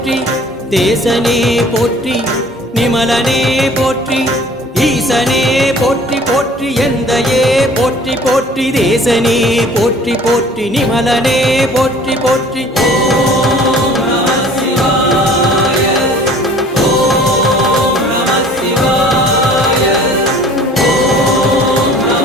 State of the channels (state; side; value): normal; both; correlation 0.50